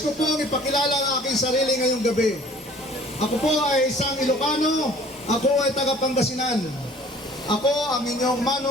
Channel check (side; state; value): both; normal; correlation 0.51